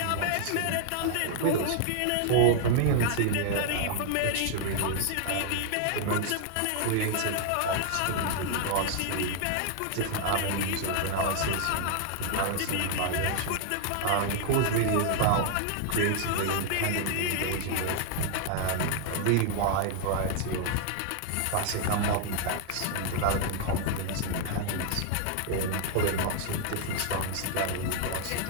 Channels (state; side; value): different; both; correlation 0.00